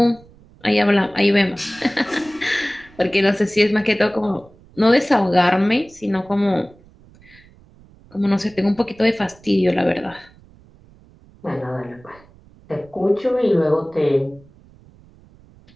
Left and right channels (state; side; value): noise; right; rumble, 26 dB below the sound